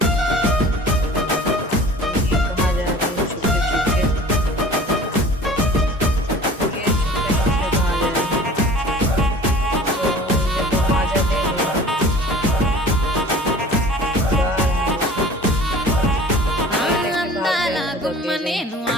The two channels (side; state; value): both; normal; correlation 0.44